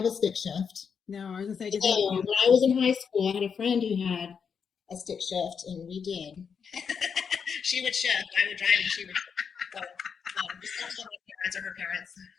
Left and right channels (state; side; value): quieter; right; 6.5 dB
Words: a stick shift. No, I was going to say, when I was in high school, I had a friend who had a stick shift, and we did. She would shift, I would drive, and she would shift. Just don't tell my parents or her parents.